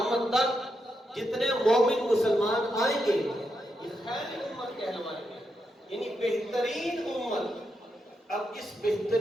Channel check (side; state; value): both; normal; correlation 0.84